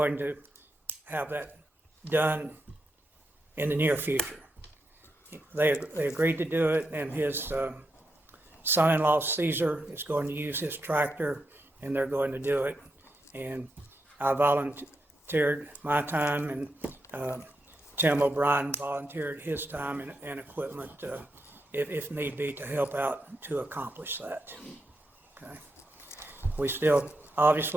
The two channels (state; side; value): normal; both; correlation 0.84